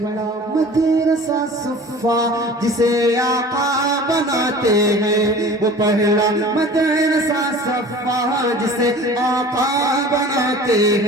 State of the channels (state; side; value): normal; both; correlation 0.42